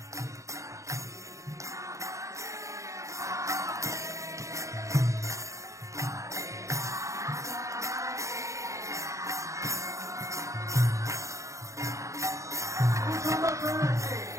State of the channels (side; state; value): left; late; 0.15 ms